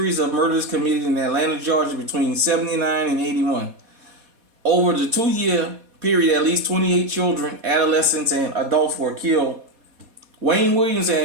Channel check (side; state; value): left; late; 4.2 ms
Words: of murders committed in Atlanta, Georgia between 79 and 81. Over the 2-year period, at least 28 children, adolescents, and adults were killed. Wayne Williams,